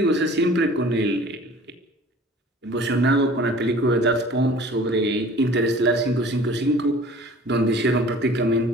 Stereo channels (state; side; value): normal; both; correlation 0.47